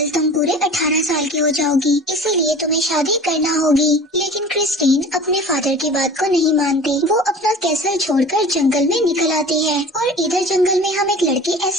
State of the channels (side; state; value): both; normal; correlation 0.40